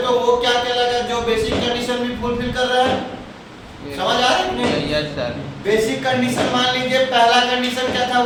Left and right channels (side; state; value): both; identical; correlation 1.00